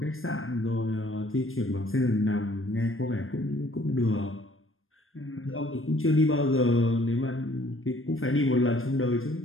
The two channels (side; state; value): right; late; 0.60 ms